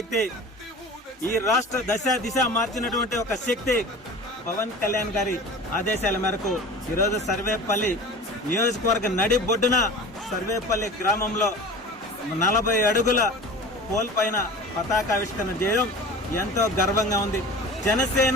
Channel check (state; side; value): normal; both; correlation 0.37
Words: ఈ రాష్ట్ర దిశ మార్చినటువంటి ఒక శక్తి పవన్ కళ్యాణ్ గారి ఆదేశాల మేరకు ఈరోజు సర్వేపల్లి నియోజకవర్గ నడి బొడ్డున సర్వేపల్లి గ్రామంలో 40 అడుగుల పోల్ పైన పతాకావిష్కరణ చేయడం ఎంతో గర్వంగా ఉంది.